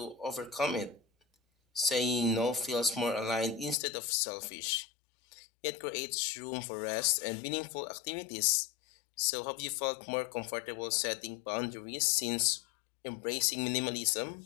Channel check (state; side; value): drops out; right; at 3.8 s